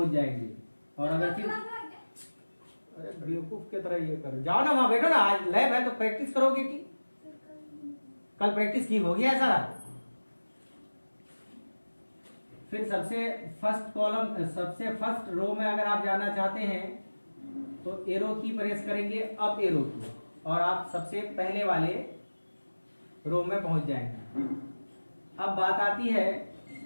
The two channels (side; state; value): both; inverted; correlation -1.00